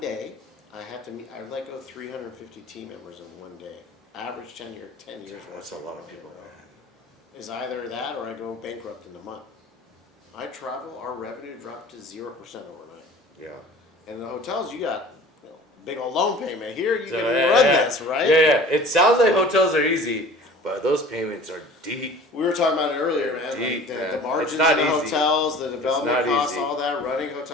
I had to meet. I let go 350 team members in one day. Average tenure, 10 years. That's a lot of people, man. Is either that or I go bankrupt in a month. I travel. Our revenue dropped to 0% overnight. Yeah. And in the hotels, you got big old loan payment. Here, you So, can yeah, run yeah. this, right? Yeah. It sounds like hotels are easy, but those payments are deep. We were talking about it earlier, man. Deep, Like man. the margins in It's not the easy. hotels, the development not costs, easy. all that. Running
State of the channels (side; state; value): both; normal; correlation 0.44